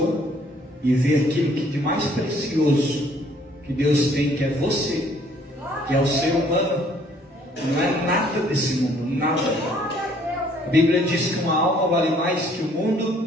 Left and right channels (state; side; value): normal; both; correlation 0.61